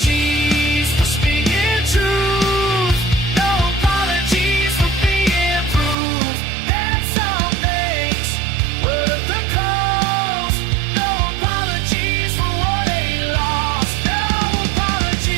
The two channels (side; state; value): left; drops out; at 6.0 s